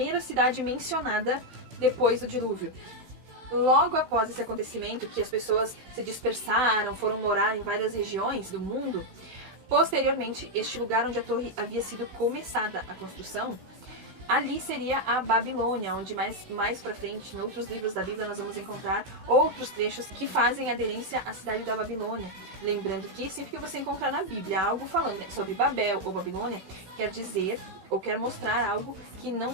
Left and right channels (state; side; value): late; left; 16 ms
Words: cidade mencionada depois do dilúvio. Logo após esse acontecimento, que as pessoas se dispersaram, foram morar em várias regiões do mundo, posteriormente, este lugar onde a torre havia sido começada a construção, ali seria a Babilônia, onde mais pra frente, em outros livros da Bíblia, nós vamos encontrar outros trechos que fazem aderência à cidade da Babilônia. Lembrando que sempre que você encontrar na Bíblia algo falando sobre Babel ou Babilônia, quer dizer ou quer mostrar algo que